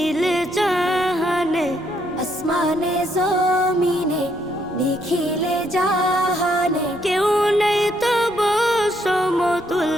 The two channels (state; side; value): noise; right; rumble, 24 dB below the sound